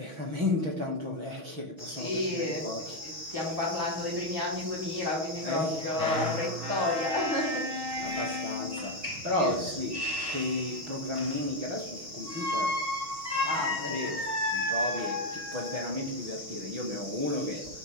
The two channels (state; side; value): late; left; 6.2 ms